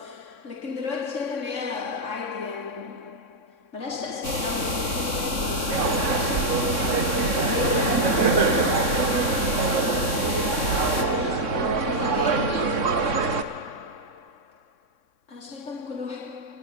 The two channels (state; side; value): late; right; 3.6 ms